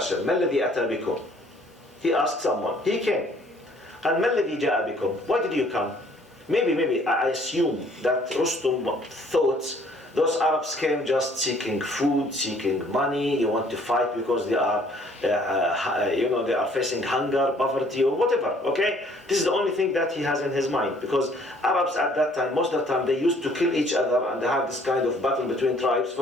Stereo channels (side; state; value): both; normal; correlation 0.59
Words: ما الذي أتى بكم? He asked someone. He came. قال ما الذي جاء بكم? Why did you come? Maybe I assume that Rustum thought those Arabs came just seeking food, seeking money. You want to fight because they are, they are facing hunger, poverty, or whatever. Okay, this is the only thing that he has in his mind, because Arabs at that time, most of the time, they used to kill each other and they have this kind of battle between tribes